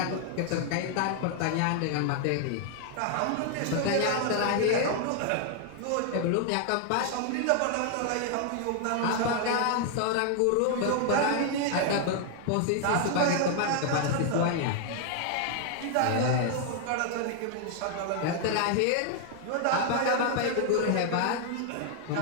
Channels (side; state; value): both; different; correlation 0.00